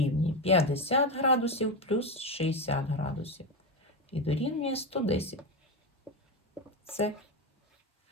50 градусів плюс 60 градусів. І дорівнює 110. Це.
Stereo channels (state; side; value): normal; both; correlation 0.14